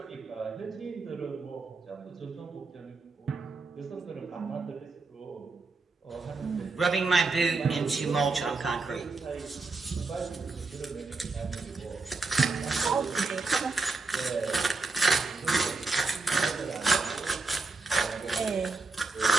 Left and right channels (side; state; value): left; quieter; 3.8 dB